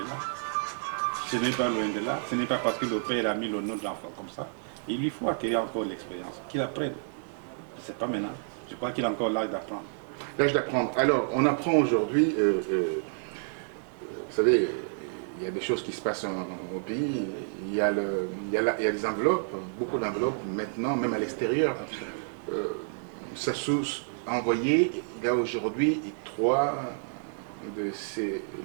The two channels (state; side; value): silent; left; digital silence